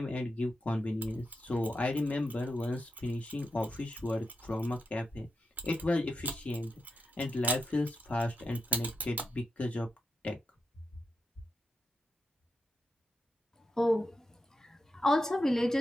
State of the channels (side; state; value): both; normal; correlation 0.86